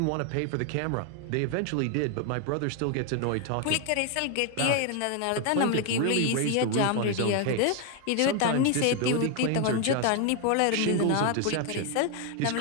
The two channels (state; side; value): different; both; correlation 0.01